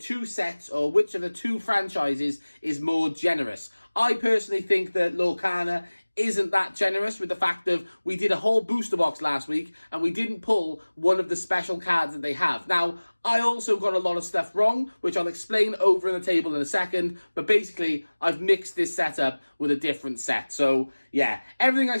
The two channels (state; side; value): inverted; both; correlation -1.00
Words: sets or which of the two franchises is more generous. I personally think that Lorcana isn't that generous with the fact of we did a whole booster box last week and we didn't pull one of the special cards that they have. Now, I also got a lot of stuff wrong, which I'll explain over in the table in a second, but basically I've mixed this setup with a different set. So yeah, everything I